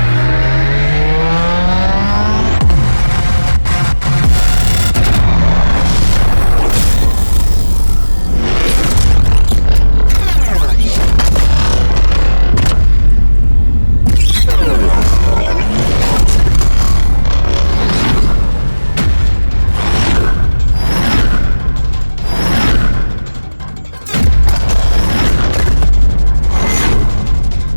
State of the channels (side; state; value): both; inverted; correlation -1.00